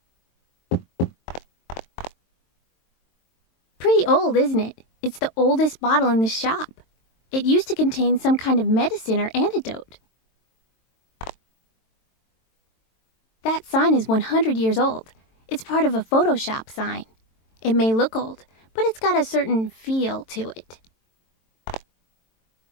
Pretty old, isn't it? It's the oldest bottle in the shop. It used to contain some kind of medicine or antidote. That sign is 100 years old. It's part of a Photoshop sign. It may look old, but it's got a certain feel to it.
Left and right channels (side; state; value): right; late; 22 ms